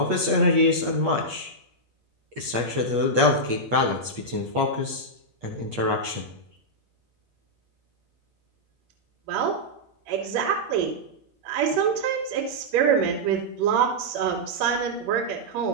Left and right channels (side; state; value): left; late; 8.5 ms